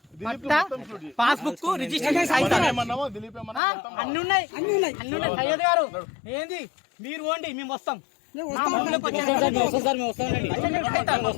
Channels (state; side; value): drops out; right; at 3.6 s